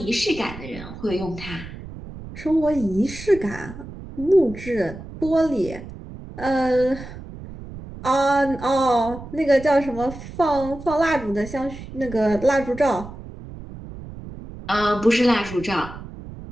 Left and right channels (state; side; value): noise; right; rumble, 13 dB below the sound